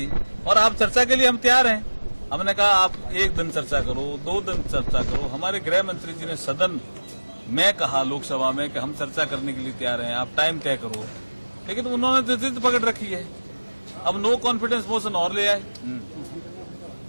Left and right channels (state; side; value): inverted; both; correlation -1.00